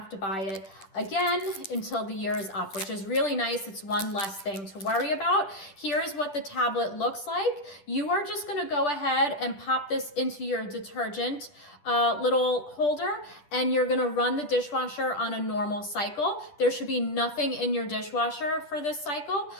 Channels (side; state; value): right; late; 10 ms